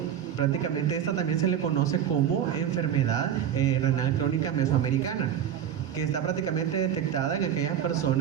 Prácticamente esta también se le conoce como enfermedad renal crónica mesoamericana, que está prácticamente detectada en aquellas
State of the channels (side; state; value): left; quieter; 9.5 dB